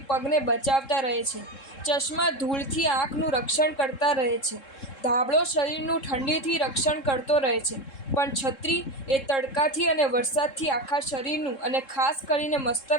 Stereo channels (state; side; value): late; right; 3.7 ms